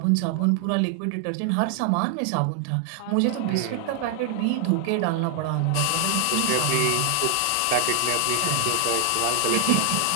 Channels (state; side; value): different; both; correlation 0.00